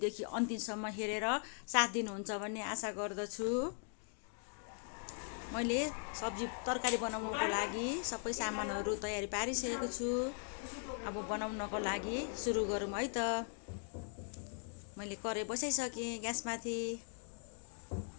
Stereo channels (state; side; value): silent; right; 51 dB below the other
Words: अन्तिमसम्म हेरेर साथ दिनुहुन्छ भन्ने आशा गर्दछु। मैले सब्जी तरकारी बनाउनको लागि सबै सामानहरु तयारी पारिसकेको छु। अब बनाउनको लागि सुरु गरौँ है त। मैले कराई बसाइसके ग्यासमाथि।